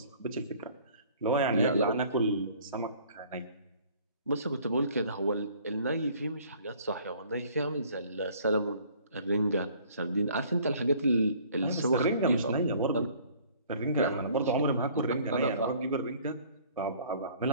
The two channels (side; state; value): both; inverted; correlation -0.55